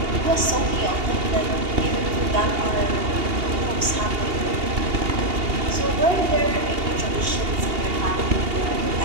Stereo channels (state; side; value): late; left; 2.8 ms